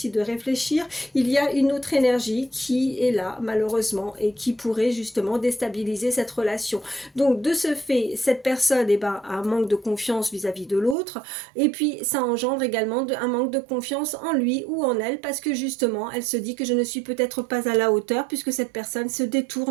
de réfléchir. Il y a une autre énergie qui est là, malheureusement, et qui pourrait justement déstabiliser cette relation. Donc, de ce fait, cette personne eh ben, a un manque de confiance vis-à-vis de l'autre, et puis ça engendre également un manque de confiance en lui ou en elle, parce que justement, elle se dit que je ne suis peut-être pas à la hauteur, puisque cette personne se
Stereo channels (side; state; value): left; drops out; at 11.0 s